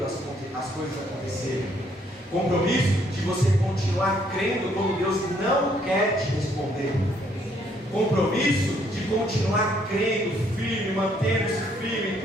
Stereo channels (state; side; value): normal; both; correlation 0.68